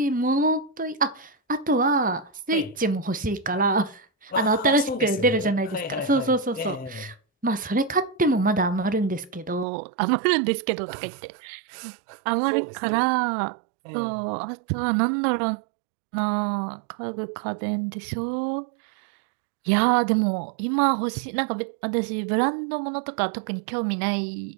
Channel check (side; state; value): left; drops out; at 9.7 s